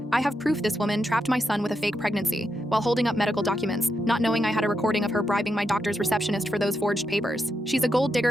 "I have proof this woman trapped my son with a fake pregnancy," while holding up medical documents, not knowing I had a recording of her bribing my doctor's receptionist for those forged papers. "She's a gold digger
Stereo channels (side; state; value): both; normal; correlation 0.84